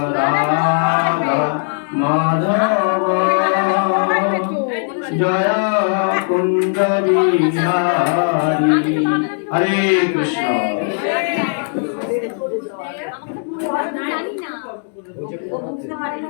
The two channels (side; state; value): right; silent; 67 dB below the other